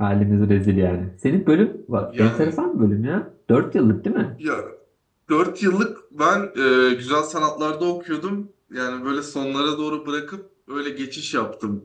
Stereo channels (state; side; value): identical; both; correlation 1.00